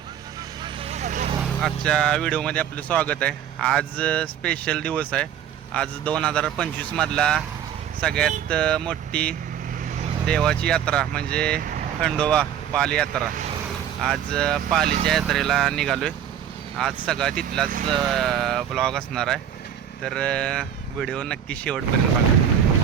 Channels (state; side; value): quieter; left; 9.5 dB